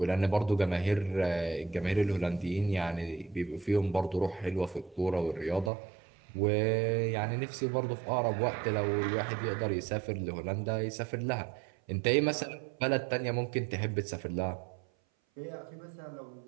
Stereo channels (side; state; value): left; drops out; at 5.7 s